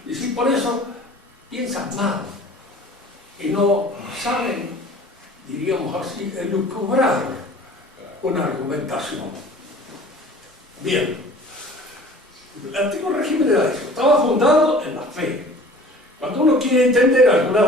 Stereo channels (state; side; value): normal; both; correlation 0.46